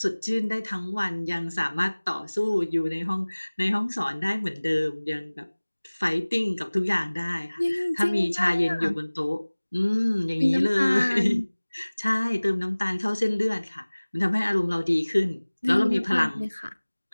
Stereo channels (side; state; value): both; inverted; correlation -1.00